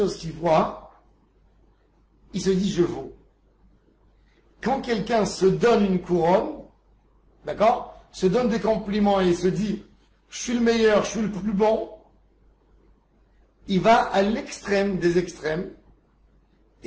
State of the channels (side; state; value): both; identical; correlation 1.00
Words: qu'il voit, il se dit je vaux. Quand quelqu'un se donne une couronne, d'accord, se donne des compliments et se dit je suis le meilleur, je suis le plus bon, il va à l'extrême des extrêmes